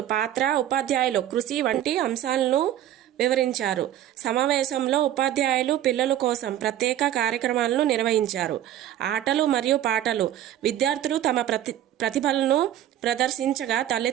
పాత్ర, ఉపాధ్యాయులు కృషి వంటి అంశాలను వివరించారు. సమావేశంలో ఉపాధ్యాయులు పిల్లల కోసం ప్రత్యేక కార్యక్రమాలను నిర్వహించారు. ఆటలు మరియు పాటలు, విద్యార్థులు తమ ప్రతిభలను ప్రదర్శించగా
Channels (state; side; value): quieter; left; 12.0 dB